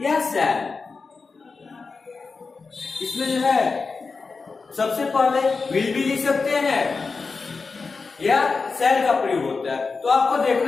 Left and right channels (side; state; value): right; quieter; 4.5 dB